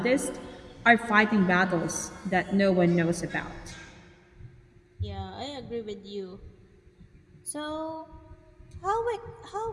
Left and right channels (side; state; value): both; identical; correlation 1.00